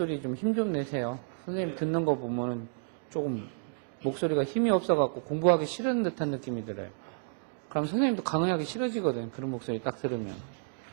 좀 힘 좀 내세요. 선생님 듣는 거 보면 조금 목소리가 힘이 없어갖고 공부하기 싫은 듯한 느낌이 들어요. 그럼 선생님도 강의하기 싫어지거든. 그런 목소리 딱 들으면.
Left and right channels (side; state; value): left; silent; digital silence